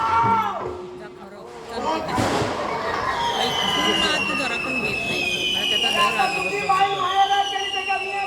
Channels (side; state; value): both; identical; correlation 1.00